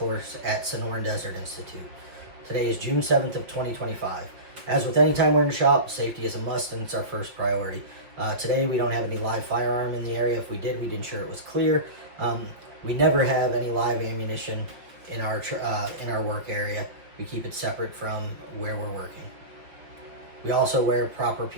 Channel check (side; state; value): left; late; 5.6 ms